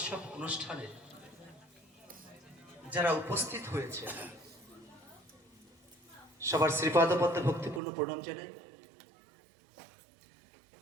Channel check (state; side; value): drops out; left; at 7.8 s